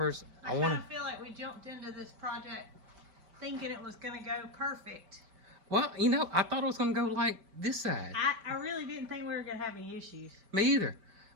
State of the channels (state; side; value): late; left; 5.1 ms